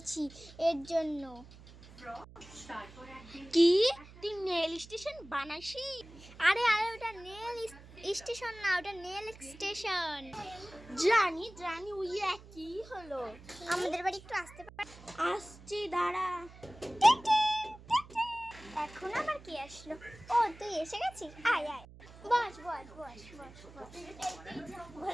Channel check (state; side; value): noise; right; hum, 19 dB below the sound